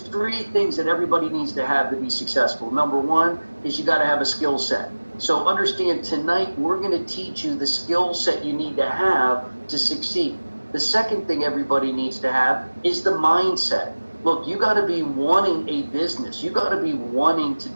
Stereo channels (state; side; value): inverted; both; correlation -1.00